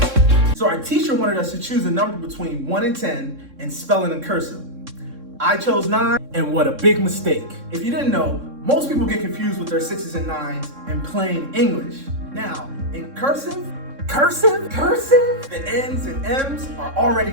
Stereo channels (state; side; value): late; left; 3.6 ms